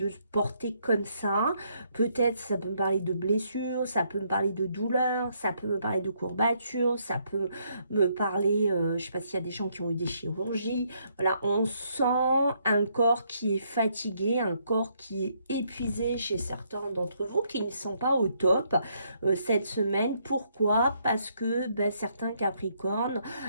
se porter comme ça. Peut-être ça peut me parler de blessures, ça peut me parler de douleurs, ça peut me parler de courbatures, ça peut me parler, je sais pas s'il y a des gens qui ont eu des chirurgies. Voilà, on sent un corps qui est fatigué, un corps qui est épuisé chez certains d'entre vous qui ne sont pas au top cette semaine. Pourquoi? Parce que certains Capricornes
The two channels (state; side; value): inverted; both; correlation -0.72